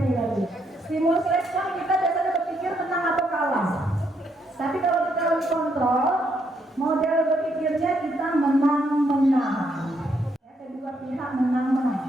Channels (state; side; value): normal; both; correlation 0.75